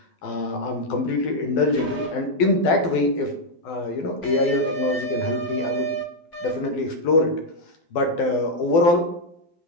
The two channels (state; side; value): late; right; 12 ms